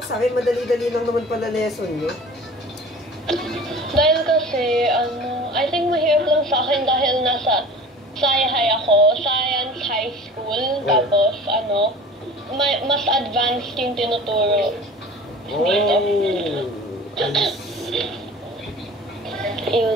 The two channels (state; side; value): normal; both; correlation 0.42